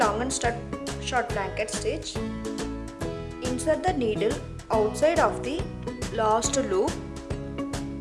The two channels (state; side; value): identical; both; correlation 1.00